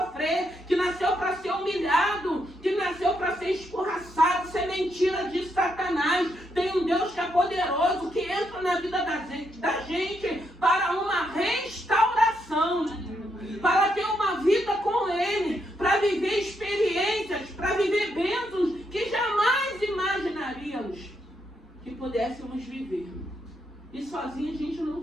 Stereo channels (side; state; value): both; normal; correlation 0.78